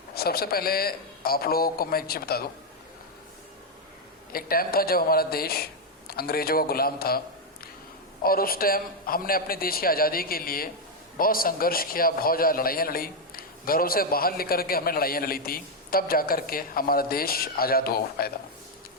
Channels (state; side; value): normal; both; correlation 0.02